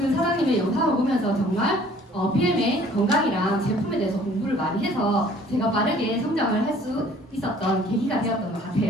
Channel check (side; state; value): both; normal; correlation 0.55